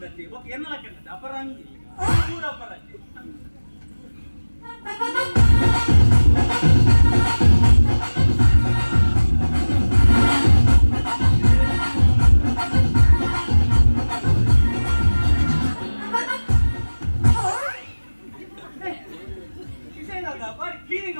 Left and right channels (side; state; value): both; inverted; correlation -1.00